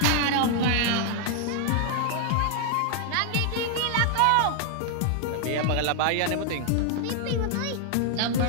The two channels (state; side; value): different; both; correlation 0.00